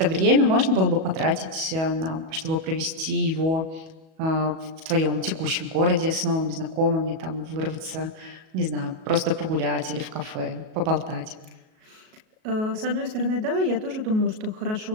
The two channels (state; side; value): late; left; 37 ms